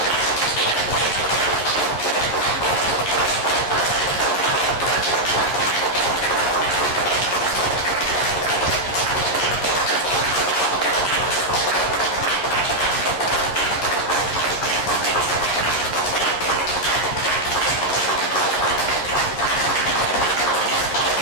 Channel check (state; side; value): late; right; 11 ms